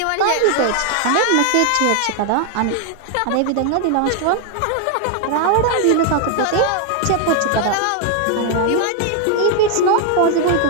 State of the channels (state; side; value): different; both; correlation 0.00